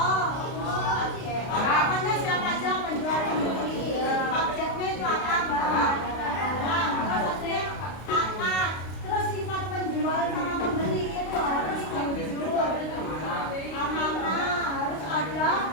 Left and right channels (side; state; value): right; late; 32 ms